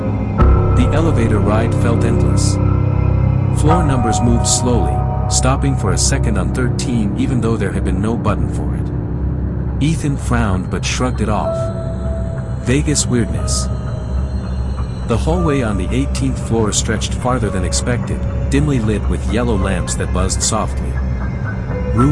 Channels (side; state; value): both; identical; correlation 1.00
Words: The elevator ride felt endless. Floor numbers moved slowly, stopping for a second on 13 even though there had been no button for it. Ethan frowned but shrugged it off. Vegas weirdness. The hallway on the 18th floor stretched farther than expected, dimly lit with yellow lamps that buzzed softly.